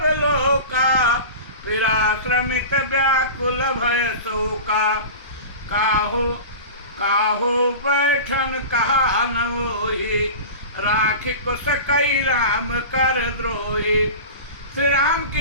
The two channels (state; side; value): inverted; both; correlation -0.33